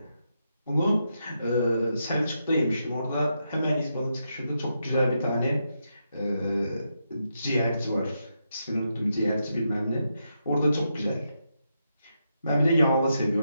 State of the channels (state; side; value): inverted; both; correlation -0.83